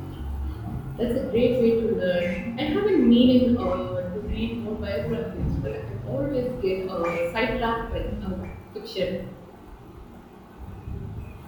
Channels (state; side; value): identical; both; correlation 1.00